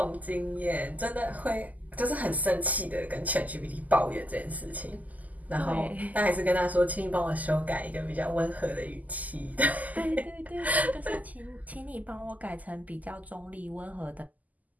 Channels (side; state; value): left; late; 0.079 ms